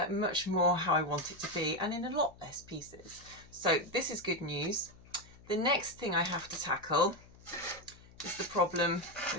much more how I want it to be and in a lot less pieces. So this is good news. The next thing I have to tackle is the problem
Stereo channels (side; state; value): left; noise; hum, 23 dB below the sound